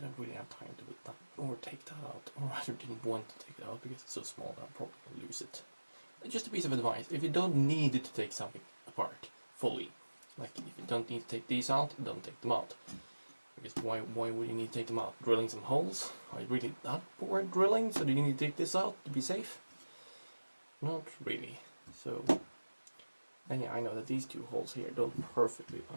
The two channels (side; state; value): both; inverted; correlation -1.00